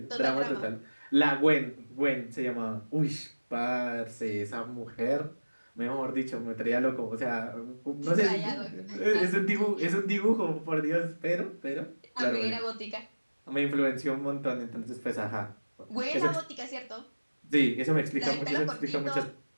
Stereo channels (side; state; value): both; inverted; correlation -1.00